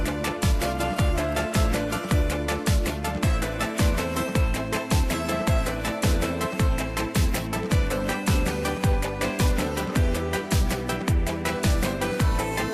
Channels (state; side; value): identical; both; correlation 1.00